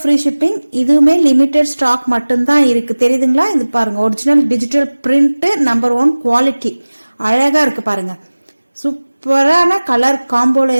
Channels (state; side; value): inverted; both; correlation -1.00